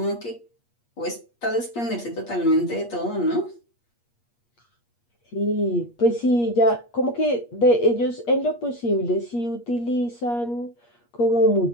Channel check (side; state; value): right; late; 8.5 ms